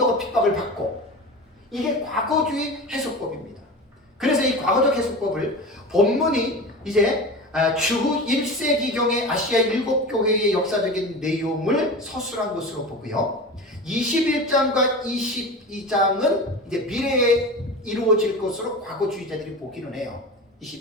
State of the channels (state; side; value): normal; both; correlation 0.30